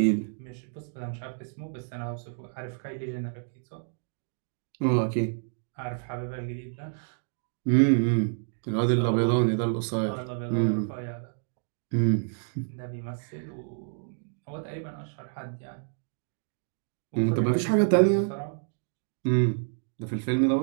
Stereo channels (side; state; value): left; silent; digital silence